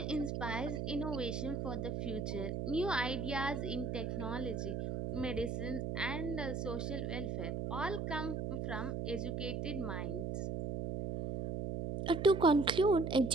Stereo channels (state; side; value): noise; right; hum, 2 dB below the sound